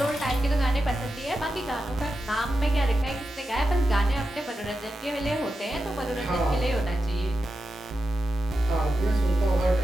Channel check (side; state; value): both; normal; correlation 0.89